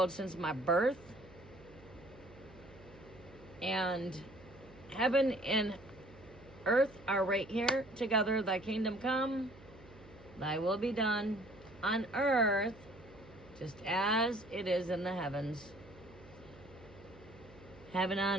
since my birth. And heaven and earth are right here together. Thy kingdom come, thy will be done on earth, just as it is in the heavens. Heaven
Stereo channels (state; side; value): noise; right; hum, 21 dB below the sound